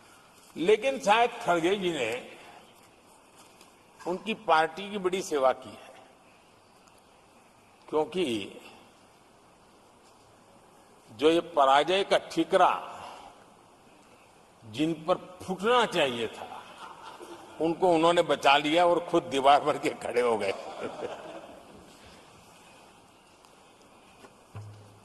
लेकिन शायद खड़गे जी ने उनकी पार्टी की बड़ी सेवा की है, क्योंकि जो ये पराजय का ठिकरा जिन पर फूटना चाहिए था, उनको उन्होंने बचा लिया और खुद दीवार भर के खड़े हो गए।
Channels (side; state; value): both; identical; correlation 1.00